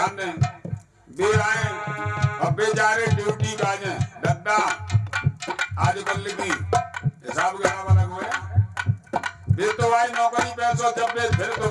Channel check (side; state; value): both; identical; correlation 1.00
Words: दें, वे आए और बेचारे ड्यूटी का जाए दद्दा आजकल की हिसाब किताब अलग हुए। वे तो आए नौकरी पैसों जब वे फिर